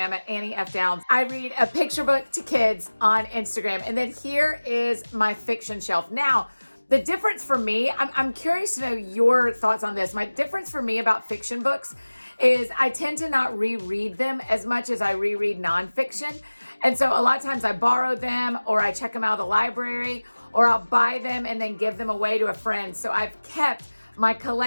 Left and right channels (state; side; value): inverted; both; correlation -1.00